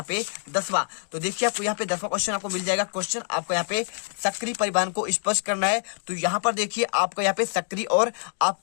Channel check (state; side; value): silent; right; digital silence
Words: पे 10वां, तो देखिए आपको यहाँ पे 10वां क्वेश्चन आपको मिल जाएगा। क्वेश्चन आपको यहाँ पे सक्रिय परिवहन को स्पष्ट करना है। तो यहाँ पर देखिए आपका यहाँ पे सक्रिय और